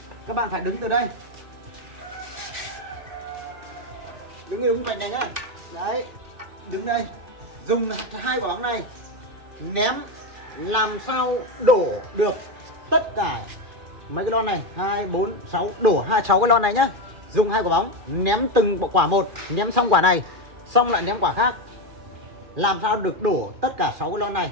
Các bạn phải đứng từ đây. Đứng đúng vạch này nhá. Đấy. Đứng đây. Dùng 2 quả bóng này ném làm sao đổ được tất cả mấy cái lon này, 2 4 6 đổ 6 cái lon này nhá. Dùng 2 quả bóng ném từng quả một, ném xong quả này, xong lại ném quả khác. Làm sao được đổ tất cả 6 cái lon này,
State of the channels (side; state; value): left; late; 2.4 ms